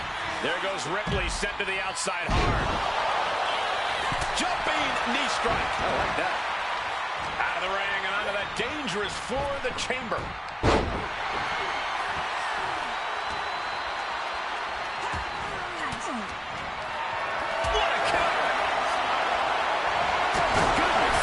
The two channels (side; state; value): both; identical; correlation 1.00